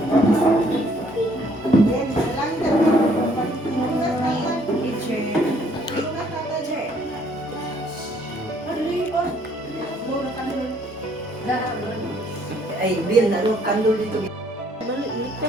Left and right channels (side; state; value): both; normal; correlation 0.64